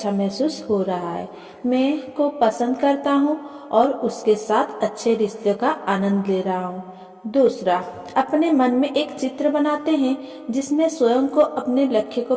महसूस हो रहा है। मैं को पसंद करता हूँ और उसके साथ अच्छे रिश्ते का आनंद ले रहा हूँ। दूसरा, अपने मन में एक चित्र बनाते हैं जिसमें स्वयं को अपने लक्ष्य को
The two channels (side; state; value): both; identical; correlation 1.00